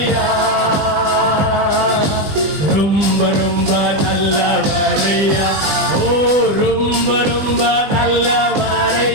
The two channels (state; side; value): late; left; 20 ms